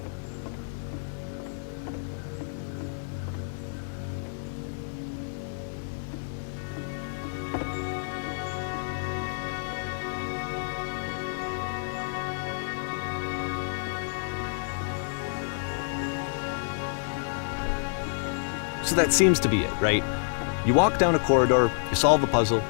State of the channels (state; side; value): silent; right; 56 dB below the other